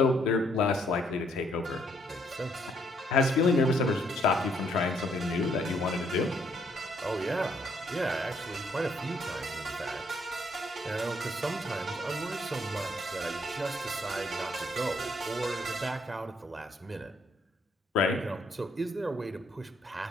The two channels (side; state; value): both; normal; correlation 0.69